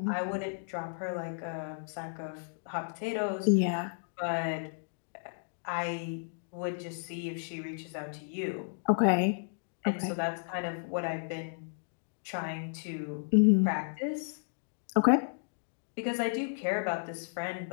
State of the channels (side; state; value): right; silent; digital silence